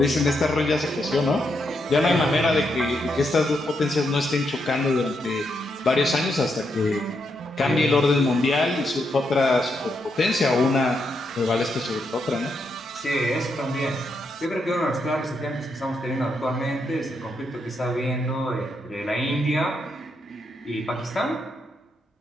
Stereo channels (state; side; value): normal; both; correlation 0.80